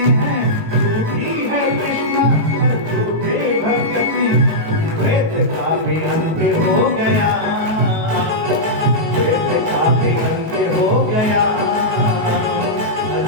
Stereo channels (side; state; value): left; late; 18 ms